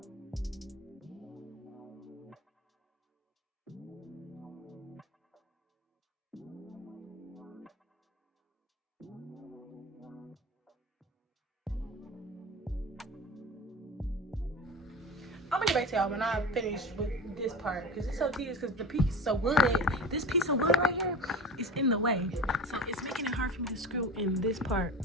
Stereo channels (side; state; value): both; normal; correlation 0.33